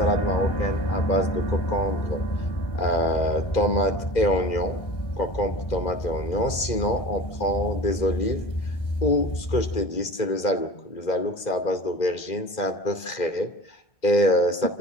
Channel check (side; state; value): right; late; 2.1 ms